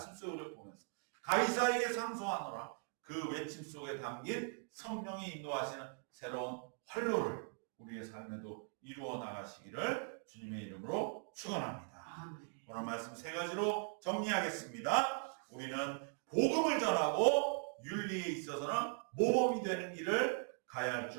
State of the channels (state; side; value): silent; left; 51 dB below the other